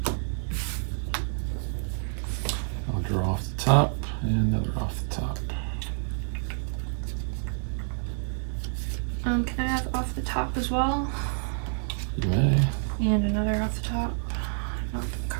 I'll draw off the top and another off the top. Can I have off the top as well? You may. And another off the top. Not the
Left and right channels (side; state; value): left; silent; digital silence